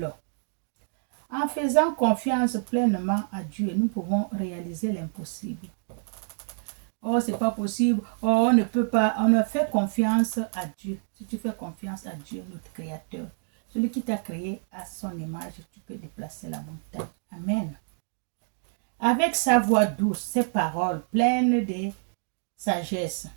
En faisant confiance pleinement à Dieu, nous pouvons réaliser l'impossible. Oh, c'est pas possible. Oh, on ne peut pas. On ne fait confiance à Dieu. Si tu fais confiance à Dieu, notre Créateur, celui qui t'a créé à son image, tu peux déplacer la montagne. Amen. Avec sa voix douce, ses paroles pleines de sagesse,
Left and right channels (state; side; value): silent; left; digital silence